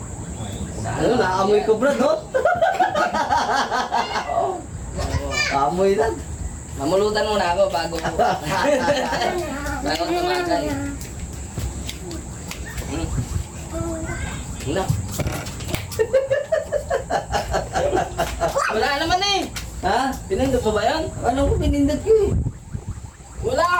Ano, naamoy ko Brad, no? Amoy lang. Mamulutan muna ako bago bago tumakay. Wala. Wala naman eh. Ha? Pinindot pa ba yan? Ano ko pinindot ko eh?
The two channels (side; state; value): both; identical; correlation 1.00